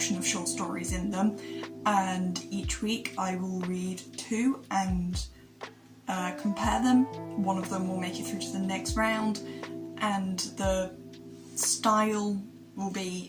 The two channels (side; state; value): both; identical; correlation 1.00